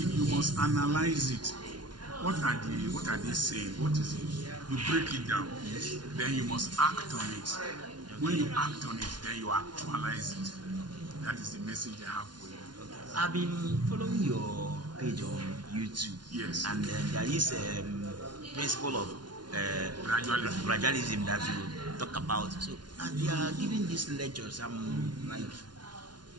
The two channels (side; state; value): left; late; 0.70 ms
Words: you must analyze it. What are they saying? What is it? You break it down. Then you must act on it. When you act on it, then you actualize it. That is the message I have for you. I've been following your page on YouTube. Yes. And there is a principle of gradualism that you talk about. So, and they are giving these lectures. I'm like